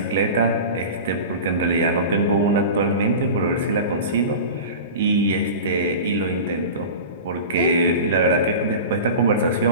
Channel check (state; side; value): inverted; both; correlation -0.32